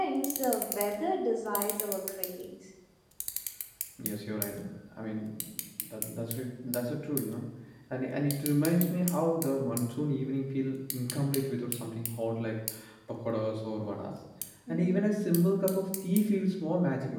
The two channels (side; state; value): both; identical; correlation 1.00